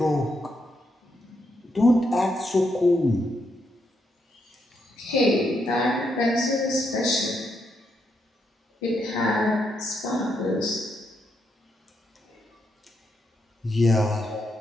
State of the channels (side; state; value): both; normal; correlation 0.79